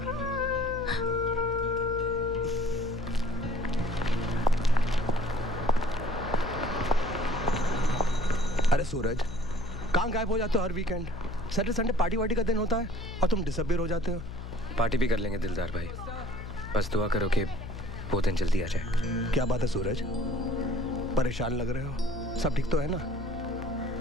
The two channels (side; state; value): left; noise; hum, 9 dB below the sound